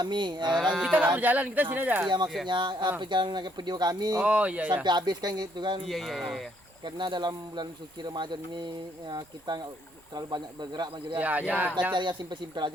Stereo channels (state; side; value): normal; both; correlation 0.69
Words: Kita nggak berjalan, kita sini aja. Iya, maksudnya perjalanan video kami Oh, iya, iya. sampai habis kan gitu kan. Iya. Karena dalam bulan suci Ramadan ini kita nggak terlalu banyak bergerak Mas Jul, Ya, ya. ya. Kita cari yang simpel-simpel